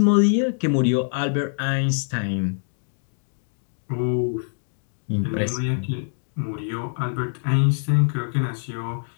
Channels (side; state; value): right; silent; digital silence